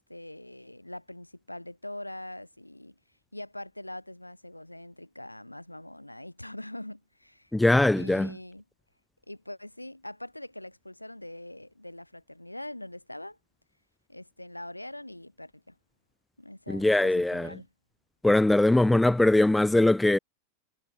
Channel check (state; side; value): normal; both; correlation 0.94